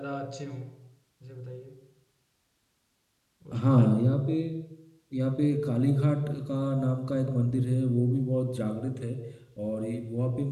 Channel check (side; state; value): both; identical; correlation 1.00